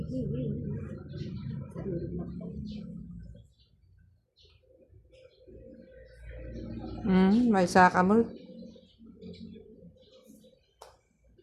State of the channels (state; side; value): identical; both; correlation 1.00